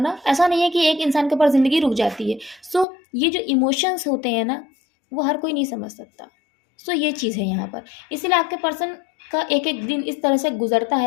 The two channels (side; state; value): right; drops out; at 2.9 s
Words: ऐसा नहीं है कि एक इंसान के ऊपर ज़िंदगी रुक जाती है। सो ये जो इमोशंस होते हैं ना, वो हर कोई नहीं समझ सकता। सो ये चीज़ है यहाँ पर। इसीलिए आपके पर्सन का एक-एक दिन इस तरह से गुज़रता